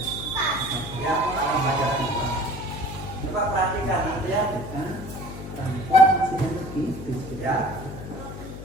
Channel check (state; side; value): noise; left; hum, 11 dB below the sound